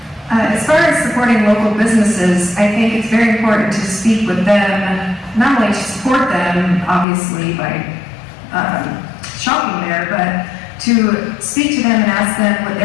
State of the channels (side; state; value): right; drops out; at 7.1 s